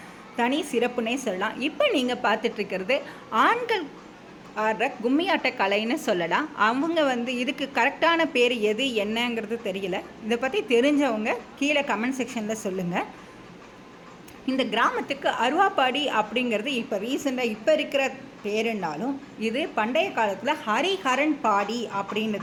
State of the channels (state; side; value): identical; both; correlation 1.00